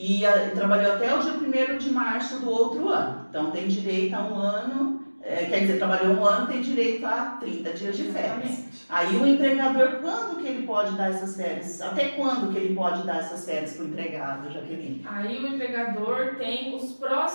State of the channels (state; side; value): inverted; both; correlation -1.00